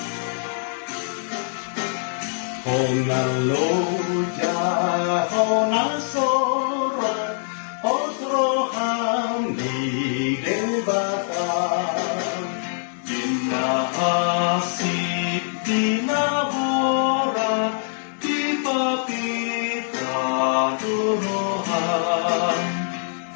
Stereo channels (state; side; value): silent; right; digital silence